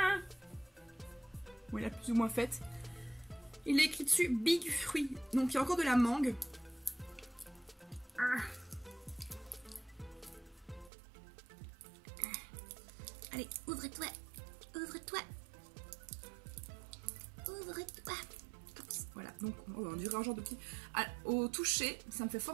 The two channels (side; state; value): left; drops out; at 10.9 s